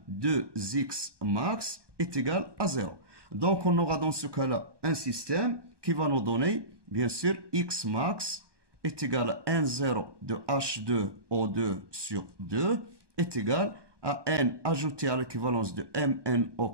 2X max est égal à 0. Donc on aura dans ce cas-là un système qui va nous donner, bien sûr, X max est égal à N0 de H2O2 sur 2 est égal à N ajouté à l'équivalence de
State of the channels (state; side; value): late; left; 1.2 ms